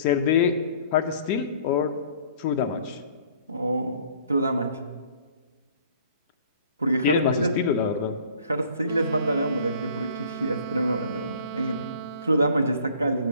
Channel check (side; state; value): both; inverted; correlation -0.53